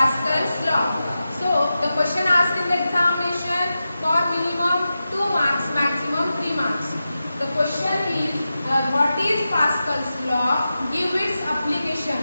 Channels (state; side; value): inverted; both; correlation -0.92